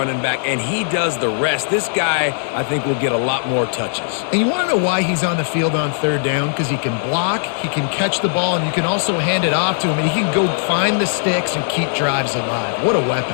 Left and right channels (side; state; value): right; silent; digital silence